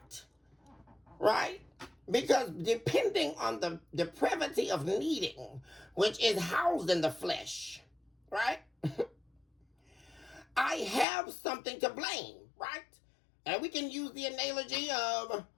right? Because depending on the depravity of needing, which is housed in the flesh, right? I have something to blame, right? And we can use the analogy of,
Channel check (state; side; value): drops out; right; at 11.1 s